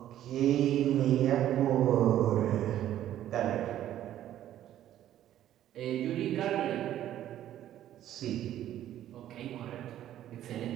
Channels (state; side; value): quieter; left; 12.1 dB